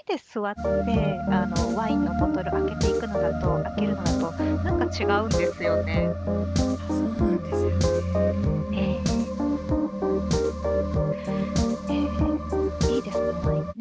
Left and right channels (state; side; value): identical; both; correlation 1.00